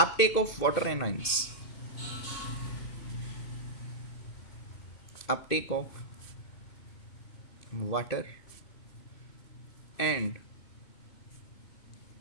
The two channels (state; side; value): late; right; 2.8 ms